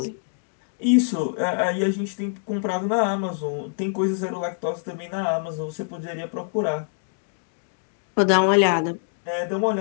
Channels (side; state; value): right; silent; digital silence